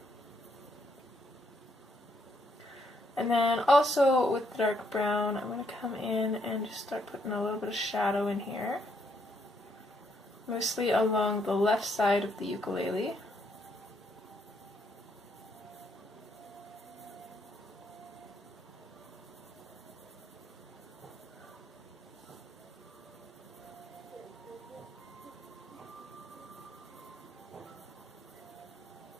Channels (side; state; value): both; normal; correlation 0.73